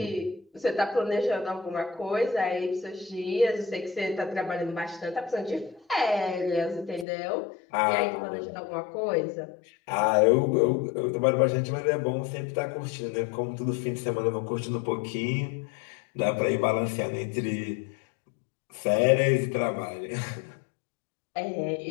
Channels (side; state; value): right; drops out; at 7.1 s